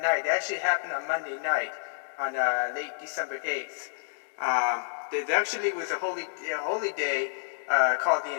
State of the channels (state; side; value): silent; right; digital silence